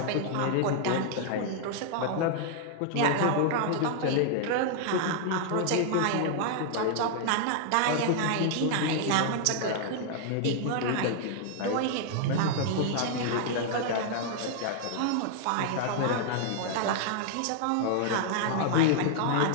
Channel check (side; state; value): both; different; correlation -0.01